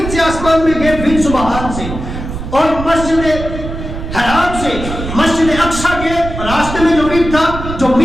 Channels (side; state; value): right; noise; rumble, 7 dB below the sound